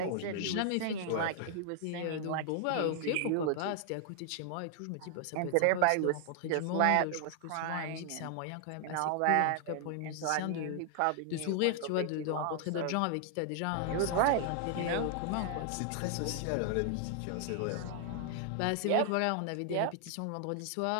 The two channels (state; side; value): different; both; correlation 0.00